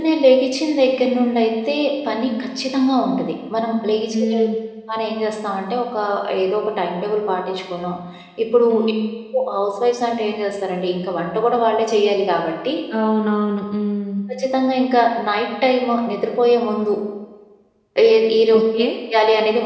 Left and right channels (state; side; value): identical; both; correlation 1.00